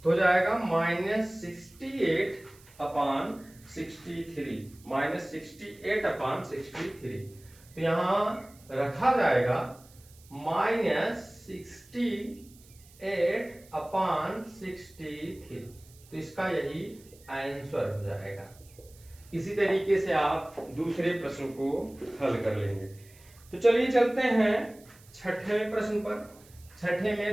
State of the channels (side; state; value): right; noise; hiss, 25 dB below the sound